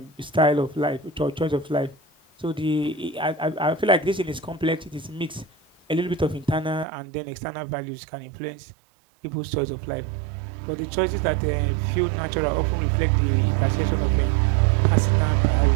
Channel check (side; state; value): left; drops out; at 6.9 s